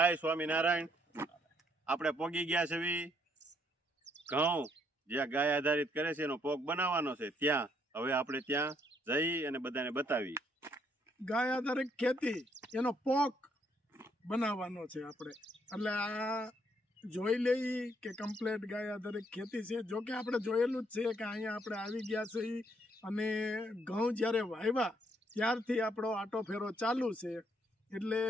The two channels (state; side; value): normal; both; correlation 0.70